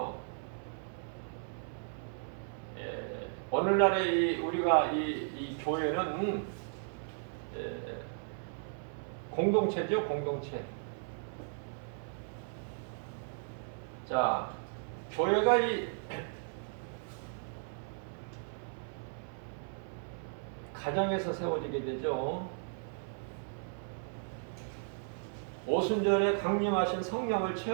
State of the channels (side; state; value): left; silent; 54 dB below the other